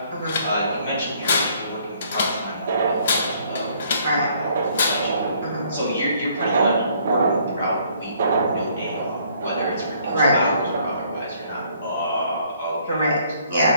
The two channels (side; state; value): both; inverted; correlation -0.63